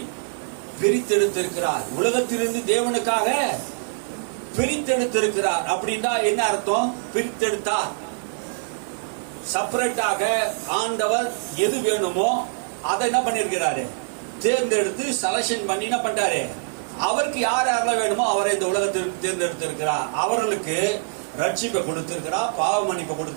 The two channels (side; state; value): left; silent; digital silence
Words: பிரித்தெடுத்திருக்கிறார். உலகத்திலிருந்து தேவனுக்காக பிரித்தெடுத்திருக்கிறார். அப்படின்னா என்ன அர்த்தம்? பிரித்தெடுத்தார். செப்பரேட்டாக ஆண்டவர் எது வேணுமோ அதை என்ன பண்ணிருக்கிறாரு? தேர்ந்தெடுத்து செலக்ஷன் பண்ணி என்ன பண்றாரு? அவருக்கு யார் யாரெல்லாம் வேணுமோ அவரை இந்த உலகத்திற்கு தேர்ந்தெடுத்திருக்கிறார். அவர்களுக்கு ரட்சிப்பை கொடுத்திருக்கிறார், பாவ மன்னிப்பை